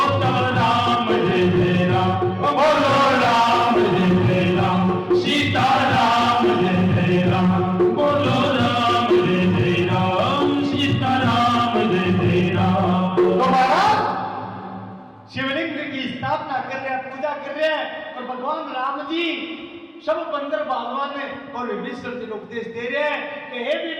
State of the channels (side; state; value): both; identical; correlation 1.00